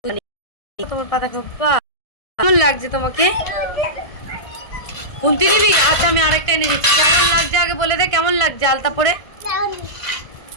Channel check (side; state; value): right; late; 1.7 ms